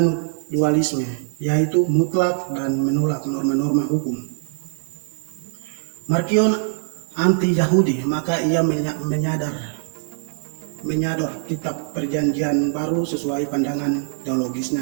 dualisme, yaitu mutlak dan menolak norma-norma hukum. Markion anti-Yahudi, maka ia menyadar kitab Perjanjian Baru sesuai pandangan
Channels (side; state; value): left; silent; 64 dB below the other